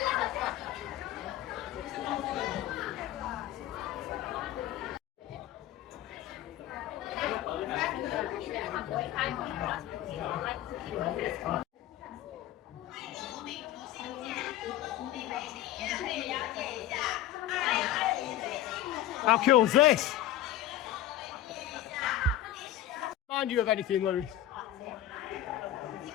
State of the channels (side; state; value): right; quieter; 12.4 dB